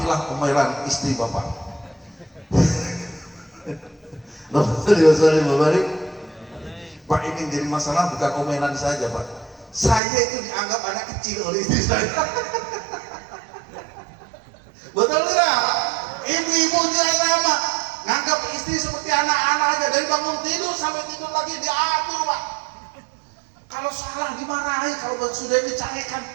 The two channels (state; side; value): drops out; left; at 10.0 s